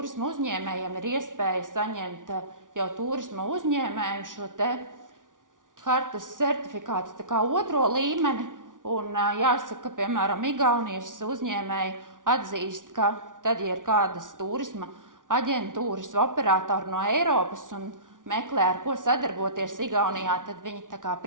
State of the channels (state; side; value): late; left; 0.88 ms